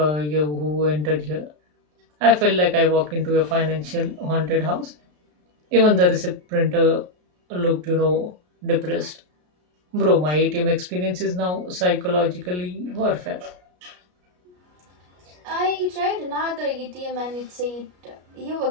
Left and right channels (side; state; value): left; late; 33 ms